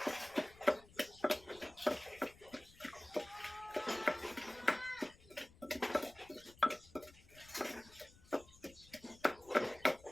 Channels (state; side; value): noise; left; rumble, 23 dB below the sound